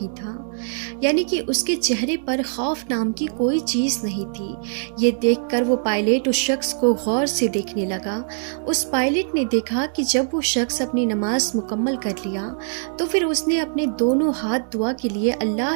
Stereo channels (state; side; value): silent; left; 64 dB below the other